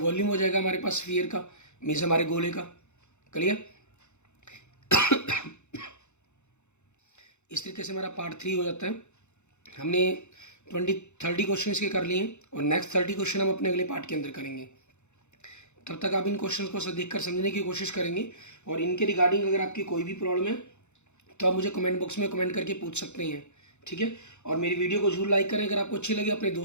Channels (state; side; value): late; right; 0.83 ms